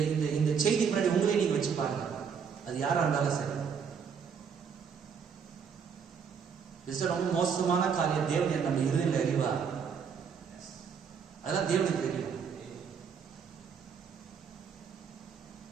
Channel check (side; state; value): left; quieter; 6.6 dB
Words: இந்த இந்த செய்தி முன்னாடி உங்களே நீங்க வச்சு பாருங்க. அது யாரா இருந்தாலும் சரி. ரொம்ப மோசமான காரியம். தேவன் நம்ம இருதயத்தில் அறிவார். அதெல்லாம் தேவனுக்கு தெரியும்.